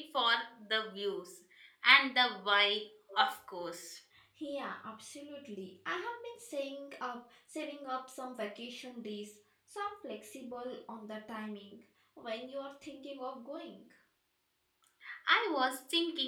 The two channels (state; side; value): identical; both; correlation 1.00